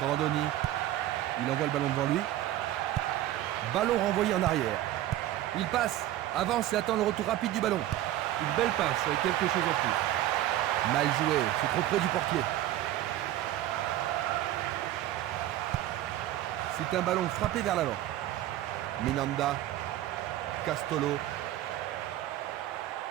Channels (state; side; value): quieter; left; 13.9 dB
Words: Grandoni. Il envoie le ballon devant lui. Ballon renvoyé en arrière. Il passe, avance et attend le retour rapide du ballon. Une belle passe avec quelque chose en plus. Mal joué, c'est trop près du portier. C'est un ballon frappé vers l'avant. Minanda. Castolo.